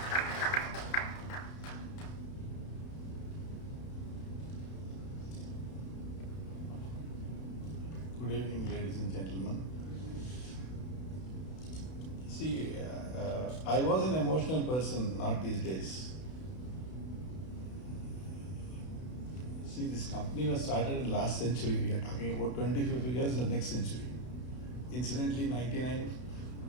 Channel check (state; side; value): late; right; 32 ms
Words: Good evening, ladies and gentlemen. See, I was an emotional person, not these days. See, this company was started in last century. We are talking about 25 years in the next century. Incidentally, 99